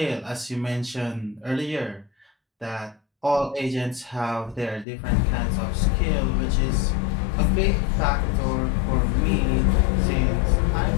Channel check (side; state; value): right; drops out; at 4.9 s